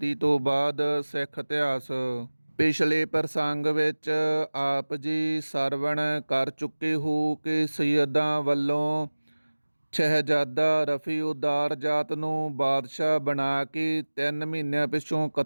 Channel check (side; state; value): both; inverted; correlation -1.00